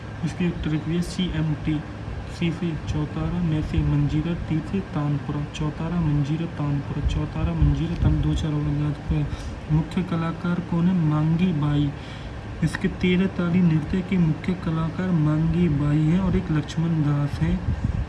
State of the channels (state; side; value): identical; both; correlation 1.00